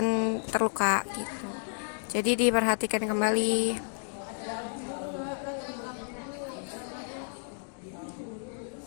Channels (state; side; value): silent; right; digital silence